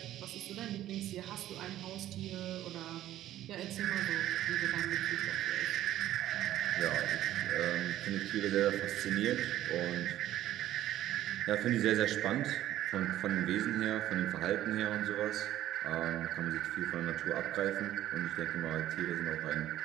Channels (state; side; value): quieter; left; 13.3 dB